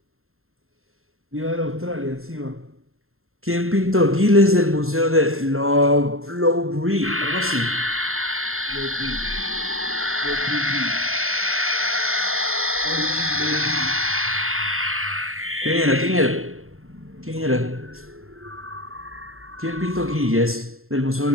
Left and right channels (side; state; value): left; late; 0.61 ms